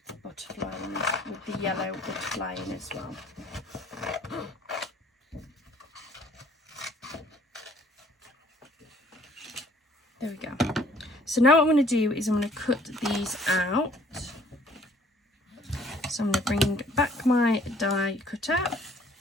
the butterfly in, with the yellow butterfly in as well. There we go. So now what I'm going to do is I'm going to cut these out. So I'm going to bring back my die cutter.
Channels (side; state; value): both; normal; correlation 0.58